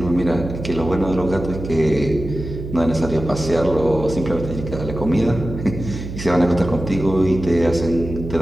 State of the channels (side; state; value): right; noise; hum, 9 dB below the sound